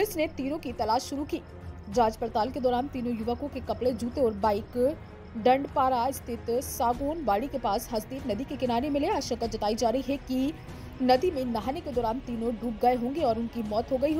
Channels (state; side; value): identical; both; correlation 1.00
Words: ने तीनों की तलाश शुरू की। जांच पड़ताल के दौरान तीनों युवकों के कपड़े, जूते और बाइक डंडपारा स्थित सागौन बाड़ी के पास हसदेव नदी के किनारे मिले। आशंका जताई जा रही है कि नदी में नहाने के दौरान तीनों डूब गए होंगे और उनकी मौत हो गई